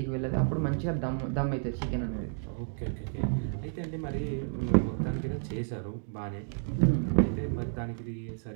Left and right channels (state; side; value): silent; left; digital silence